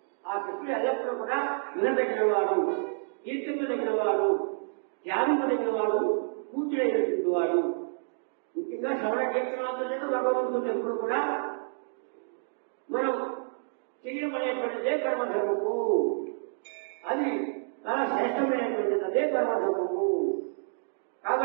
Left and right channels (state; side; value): silent; left; digital silence